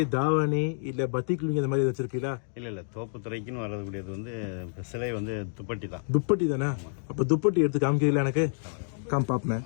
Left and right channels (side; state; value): right; silent; digital silence